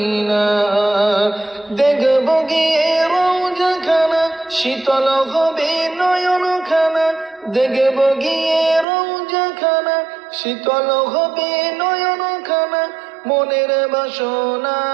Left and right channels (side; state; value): left; drops out; at 8.8 s